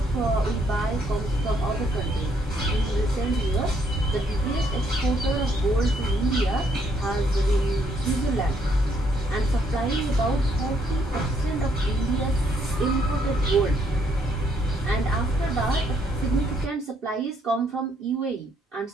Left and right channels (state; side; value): normal; both; correlation 0.71